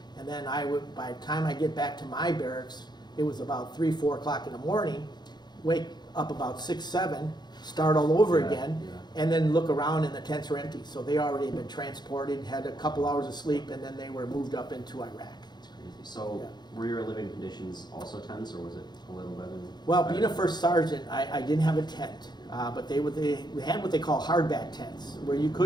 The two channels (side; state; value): right; late; 0.21 ms